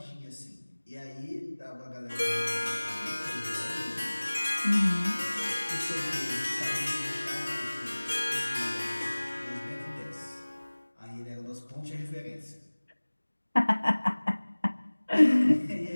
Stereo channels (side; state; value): both; inverted; correlation -1.00